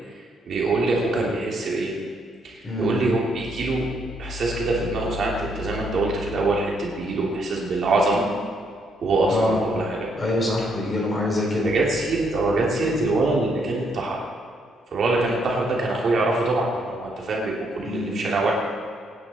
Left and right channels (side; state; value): both; normal; correlation 0.73